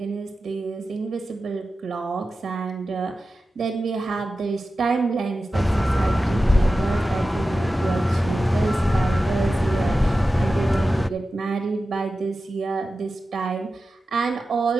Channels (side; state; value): both; normal; correlation 0.93